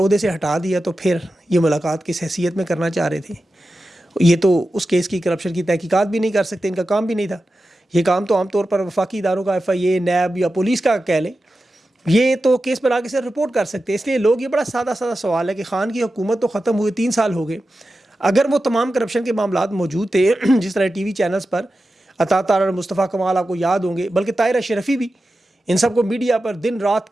سے ہٹا دیا تو پھر یہ ملاقات کس حیثیت میں کرنا چاہ رہے تھے. یہ تو اس کیس کی کرپشن کی تحقیقات بھی نہیں کر سکتے, ان کا کام بھی نہیں تھا. یہ کام تو عام طور پر وفاقی اداروں کا FIA, نیب یا پولیس کا کہہ لیں, یہ تو کیس پر آگے سے رپورٹ کر سکتے. اس لیے لوگ, یہ بڑا سادہ سوال ہے کہ خان کی حکومت تو ختم ہوئے 3 سال ہو گئے, اگر وہ تمام کرپشن کے معاملات موجود تھے جس طرح TV چینلز پر عطا طاہر اور مصطفیٰ کمال آپ کو یاد ہوں گے, بلکہ طاہر اشرفی بھی, ان سب کو میڈیا پر دن رات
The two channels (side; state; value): both; normal; correlation 0.92